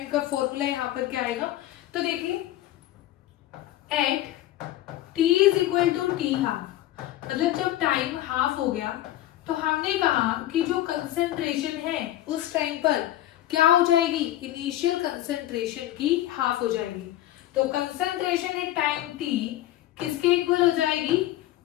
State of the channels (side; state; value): right; quieter; 14.3 dB